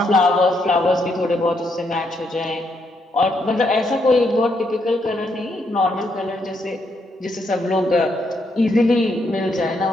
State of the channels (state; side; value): normal; both; correlation 0.76